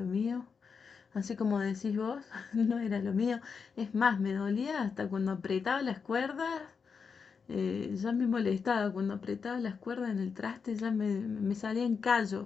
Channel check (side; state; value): right; quieter; 5.7 dB